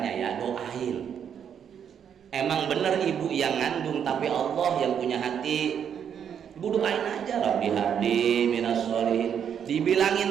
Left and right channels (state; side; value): quieter; left; 8.2 dB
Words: ya? Doain. Emang bener ibu yang ngandung, tapi Allah yang punya hati. Ibu doain aja, Rabbi habli minas solihin.